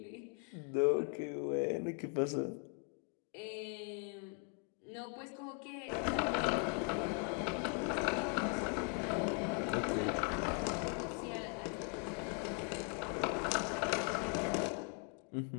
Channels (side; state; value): right; quieter; 37.7 dB